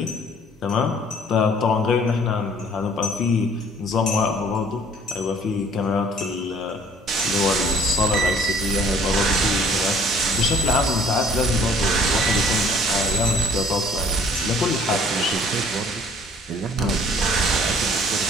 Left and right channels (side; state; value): both; normal; correlation 0.56